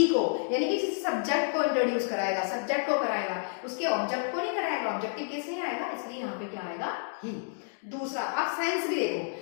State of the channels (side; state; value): right; silent; digital silence